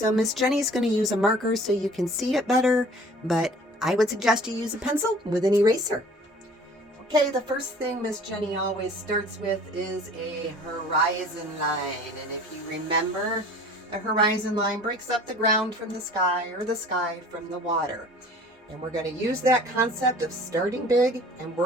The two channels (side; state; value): both; normal; correlation 0.48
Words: Miss Jenny's going to use a marker so you can see it better, but I would suggest you use a pencil with an eraser. Okay, the first thing Miss Jenny always starts with is a horizon line. And if you remember, a horizon line breaks up the ground from the sky or the sky from the water. And we're going to use that concept of starting big and